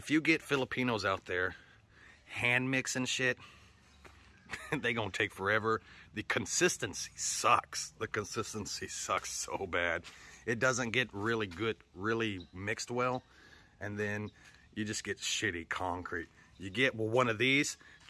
you get Filipinos out there hand mixing shit, they gonna take forever. The consistency sucks. The consistency sucks so bad. It doesn't get really good, really mixed well, and then you just get shitty concrete. You get one of these,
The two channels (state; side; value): identical; both; correlation 1.00